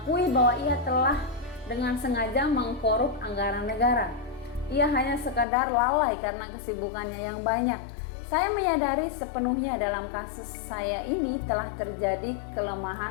bahwa ia telah dengan sengaja mengkorup anggaran negara. Ia hanya sekadar lalai karena kesibukannya yang banyak. Saya menyadari sepenuhnya dalam kasus saya ini telah terjadi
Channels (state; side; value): drops out; right; at 5.5 s